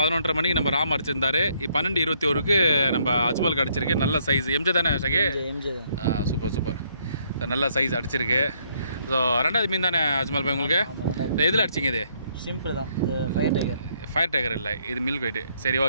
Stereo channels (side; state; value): both; inverted; correlation -0.69